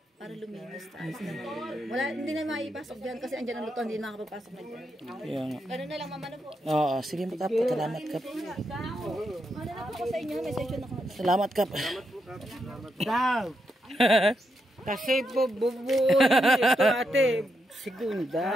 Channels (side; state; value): both; normal; correlation 0.82